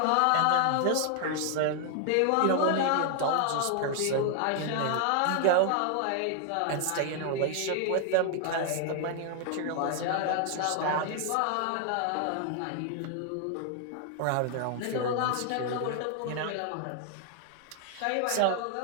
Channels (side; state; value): both; different; correlation 0.00